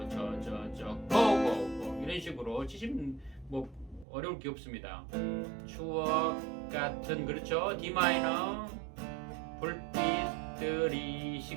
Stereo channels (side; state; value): left; drops out; at 4.0 s